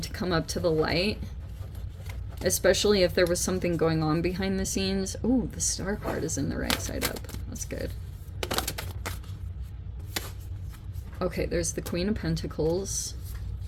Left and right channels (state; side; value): identical; both; correlation 1.00